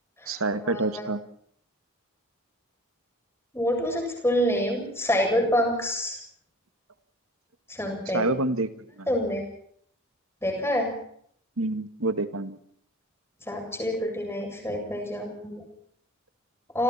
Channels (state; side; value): normal; both; correlation 0.40